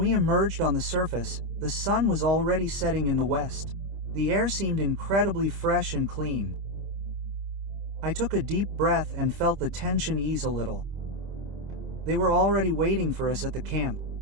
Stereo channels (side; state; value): left; late; 25 ms